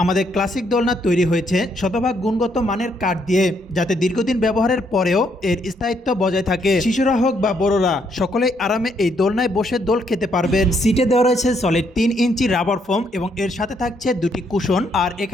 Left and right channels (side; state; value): both; normal; correlation 0.73